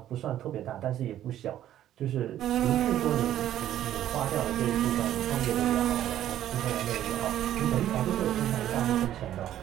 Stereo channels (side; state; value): left; quieter; 12.0 dB